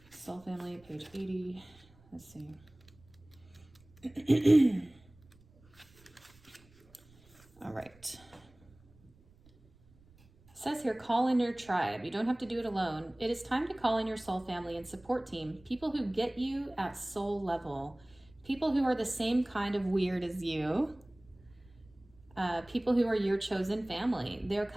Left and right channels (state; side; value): noise; right; rumble, 27 dB below the sound